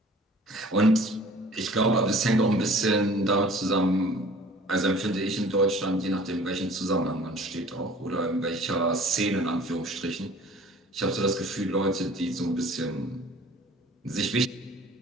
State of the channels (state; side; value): normal; both; correlation 0.49